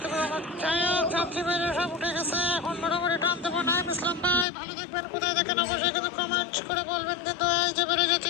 পারো আমার। যাই হোক, যাত্রী বাইরে সব উঠে গেছে, এখন মোটামুটি টান দেবো। নাইম ইসলাম ভাই ভালো থাকবেন। কোথায় দেখেন অবশ্যই কিন্তু কমেন্ট করে বলবেন। কিন্তু এই যে বেড়ে যাচ্ছে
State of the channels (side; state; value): right; drops out; at 4.5 s